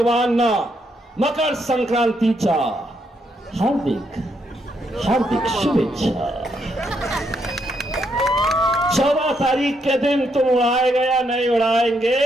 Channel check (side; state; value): both; normal; correlation 0.76